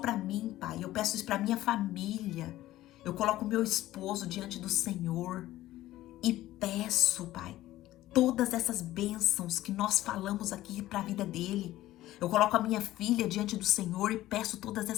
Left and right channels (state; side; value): quieter; right; 15.3 dB